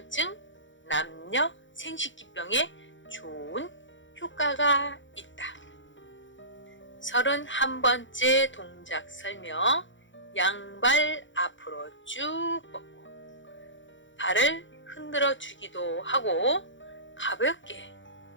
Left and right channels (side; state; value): right; late; 0.55 ms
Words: 남녀 생식기병에 좋은 효과가 있다. 31번째 동작 설명. 양발 앞으로 쭉 뻗고 발을 흔들어 주기도 하고 가볍게